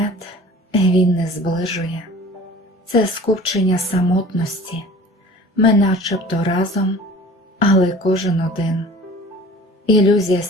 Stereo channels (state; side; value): normal; both; correlation 0.44